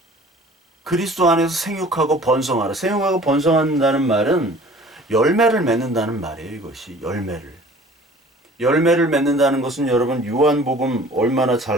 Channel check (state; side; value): normal; both; correlation 0.48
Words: 그리스도 안에서 생육하고 번성하라. 생육하고 번성한다는 말은 열매를 맺는다는 말이에요. 이것이 열매를 맺는다는 것은 여러분 요한복음 얼마나